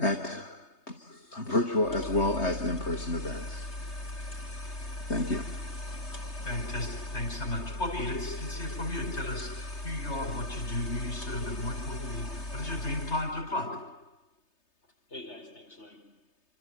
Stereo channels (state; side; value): late; right; 3.3 ms